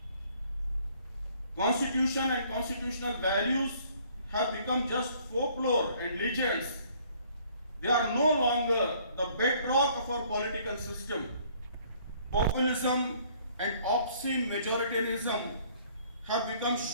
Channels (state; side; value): inverted; both; correlation -0.60